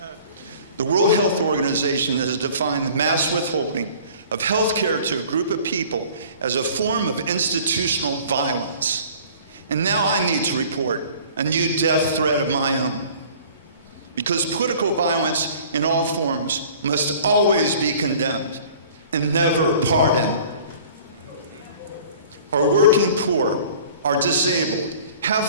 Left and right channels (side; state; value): both; inverted; correlation -0.48